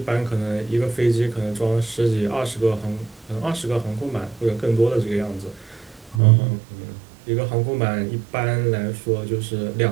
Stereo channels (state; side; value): drops out; left; at 6.2 s